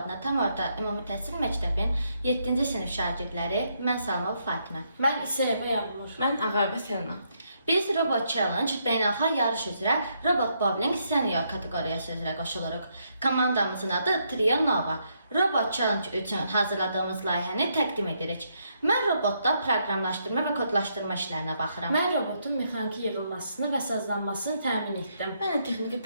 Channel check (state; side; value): inverted; both; correlation -0.76